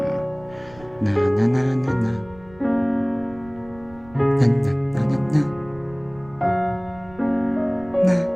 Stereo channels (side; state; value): right; noise; rumble, 23 dB below the sound